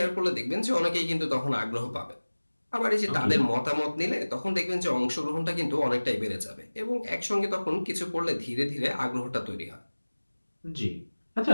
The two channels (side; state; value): both; inverted; correlation -1.00